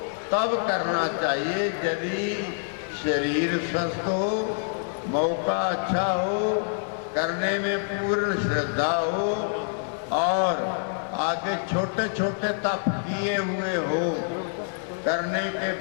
तब करना चाहिए यदि शरीर स्वस्थ हो, मौका अच्छा हो, करने में पूर्ण श्रद्धा हो और आगे छोटे छोटे तप किए हुए हो। करने के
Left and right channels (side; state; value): right; silent; digital silence